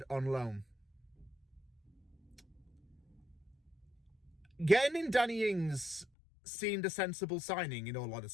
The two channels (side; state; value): right; drops out; at 6.1 s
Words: on loan. Getting in Danny Ings seemed a sensible signing, in all